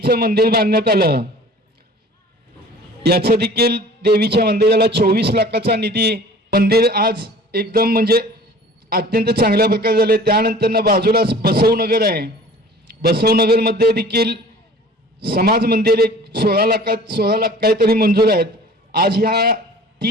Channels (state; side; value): normal; both; correlation 0.46